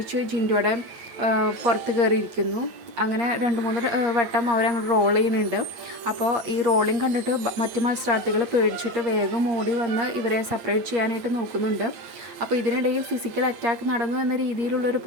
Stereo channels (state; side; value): late; left; 8.5 ms